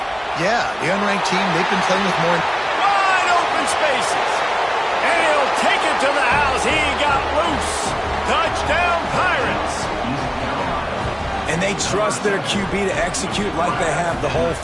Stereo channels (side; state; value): both; identical; correlation 1.00